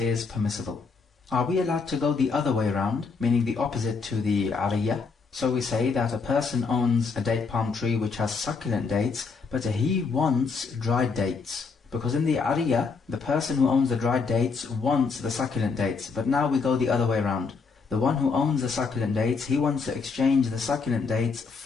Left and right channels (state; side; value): quieter; right; 4.8 dB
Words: permissible. Are we allowed to go the other way around, meaning the opposite to the ariyah? So we say that a person owns a date palm tree which has succulent dates, but he wants dried dates. Because in the ariyah, the person who owns the dried dates wants the succulent dates. But now we go the other way around. The one who owns the succulent dates, he wants to exchange the succulent dates